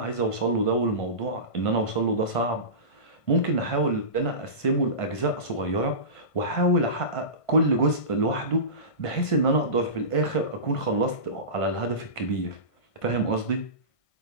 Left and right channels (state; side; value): late; right; 1.5 ms